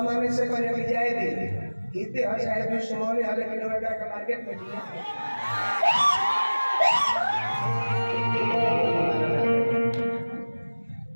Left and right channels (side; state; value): both; inverted; correlation -1.00